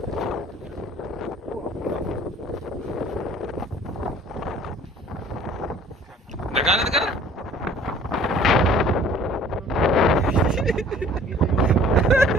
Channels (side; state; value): both; normal; correlation 0.52